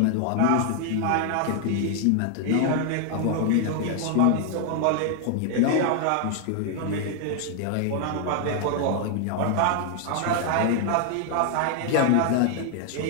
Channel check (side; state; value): both; different; correlation 0.00